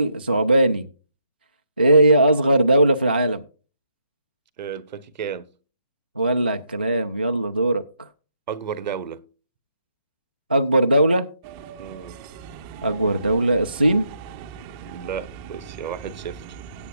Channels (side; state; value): both; inverted; correlation -0.77